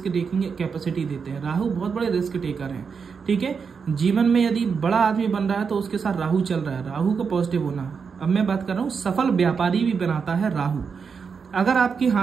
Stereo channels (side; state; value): left; quieter; 5.8 dB